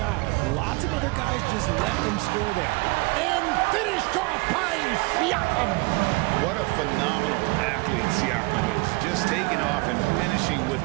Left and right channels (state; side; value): quieter; left; 25.9 dB